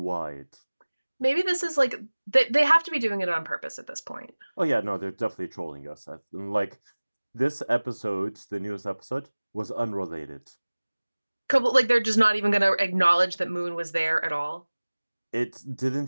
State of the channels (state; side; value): inverted; both; correlation -1.00